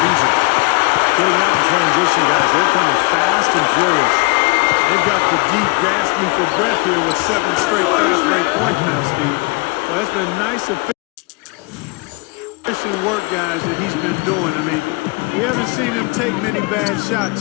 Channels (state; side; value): quieter; right; 28.2 dB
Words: Beasley. Getting out in transition, guys. They're coming fast and furious. They've got the deep gasping for breath here with 7 straight fast break points now, Steve. Well, that's been nice efficient work, guys, that he's been doing. I mean, we haven't seen him take many bad